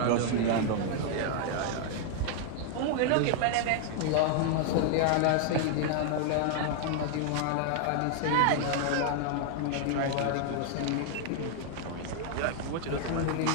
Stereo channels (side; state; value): both; different; correlation 0.00